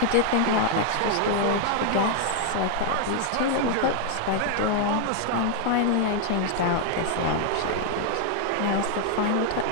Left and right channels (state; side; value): different; both; correlation 0.00